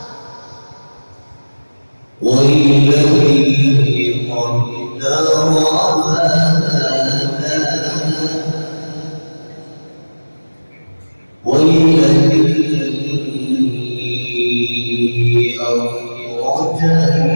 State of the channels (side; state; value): both; inverted; correlation -1.00